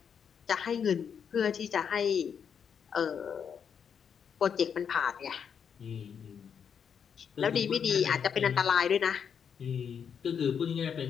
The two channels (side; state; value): right; quieter; 7.3 dB